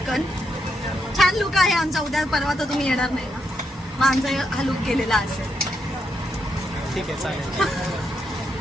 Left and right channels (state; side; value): normal; both; correlation 0.81